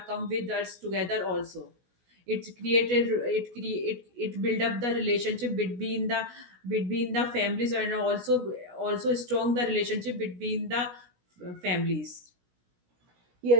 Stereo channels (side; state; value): left; late; 17 ms